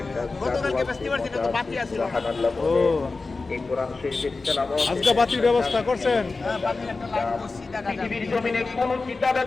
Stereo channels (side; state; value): right; quieter; 3.8 dB